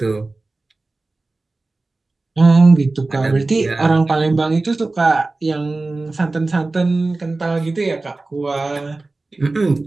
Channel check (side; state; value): left; quieter; 3.3 dB